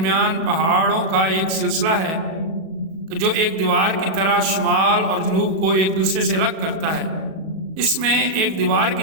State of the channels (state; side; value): late; left; 37 ms